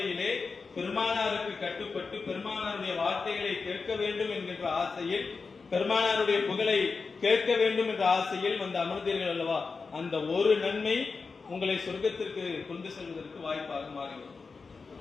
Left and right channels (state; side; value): quieter; right; 4.6 dB